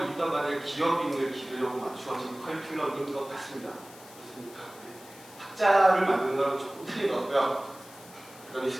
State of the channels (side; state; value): left; noise; hiss, 20 dB below the sound